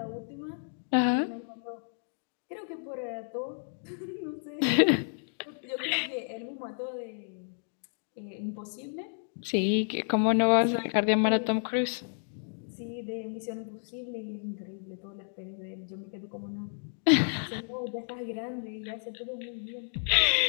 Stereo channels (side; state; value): right; silent; digital silence